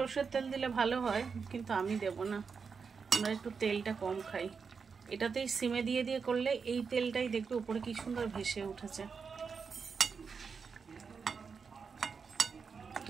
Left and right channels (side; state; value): left; quieter; 5.6 dB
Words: তেল দিলে ভালো হয়, কিন্তু আমি দেব না, আমরা একটু তেলটা কম খাই। এটাতেই সিমে দিয়ে দিয়ে করলে এই তেলটাই দেখবে উপরে কি সুন্দর ভেসে উঠেছে।